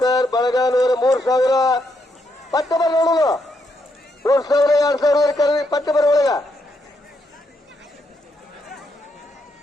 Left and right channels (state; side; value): normal; both; correlation 0.78